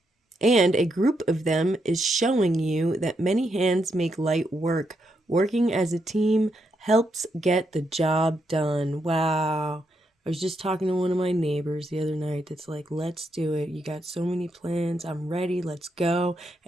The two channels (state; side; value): normal; both; correlation 0.80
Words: and a group of them is showing you that many hands make light work. Working as a team helps get the job done. Wow. I was just talking to one of my neighbors the other night that's like, let's do it. You got so many plans. I'm ready. Let's go.